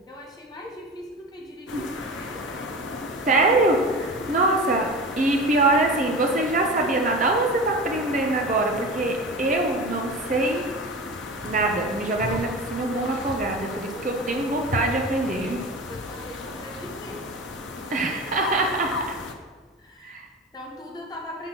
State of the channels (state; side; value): normal; both; correlation 0.31